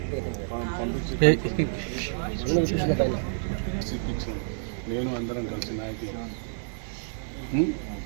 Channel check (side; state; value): left; silent; digital silence